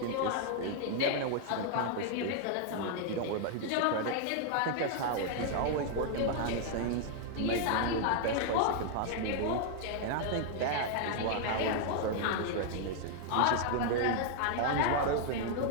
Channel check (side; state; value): both; different; correlation 0.00